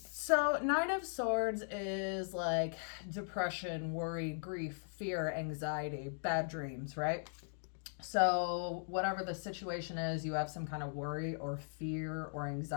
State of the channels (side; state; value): right; silent; digital silence